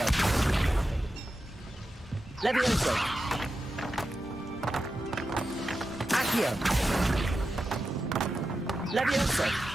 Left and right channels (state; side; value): normal; both; correlation 0.90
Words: Levioso! Accio! Levioso!